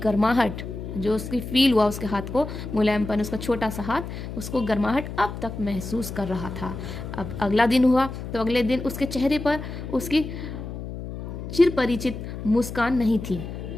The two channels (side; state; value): left; noise; hum, 8 dB below the sound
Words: जो उसकी फील हुआ उसके हाथ को, मुलायमपन, उसका छोटा सा हाथ, उसको गर्माहट अब तक महसूस कर रहा था। अब अगला दिन हुआ तो अगले दिन उसके चेहरे पर उसकी चिरपरिचित मुस्कान नहीं थी।